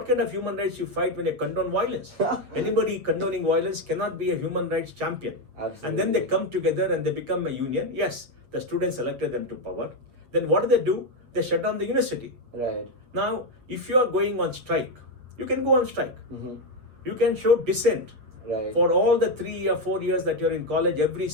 kind of human rights you fight when you condone violence? Anybody condoning violence cannot be a human rights champion. Absolutely. And then they come together and they become a union. Yes, the students elected them to power. Then what do? They shut down the university. Right. Now, if you are going on strike, you can go on strike. Mm-hmm. You can show dissent. Right. For all the 3 or 4 years that you're in college, every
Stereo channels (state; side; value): late; left; 8.0 ms